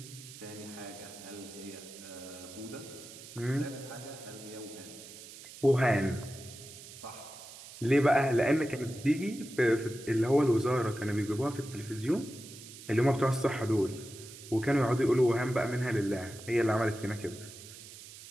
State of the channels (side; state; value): right; noise; hiss, 16 dB below the sound